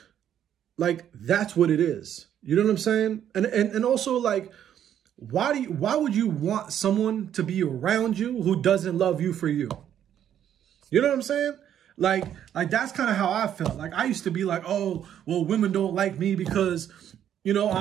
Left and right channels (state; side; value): quieter; left; 10.1 dB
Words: like that's what it is. You know what I'm saying? And also, like, why would you want someone to be around you who doesn't love you for you? You know what I'm saying? Like that's kind of how I felt. Like I used to be like, oh, well, women don't like me because, you know,